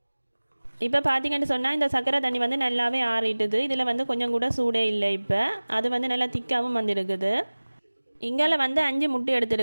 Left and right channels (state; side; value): inverted; both; correlation -1.00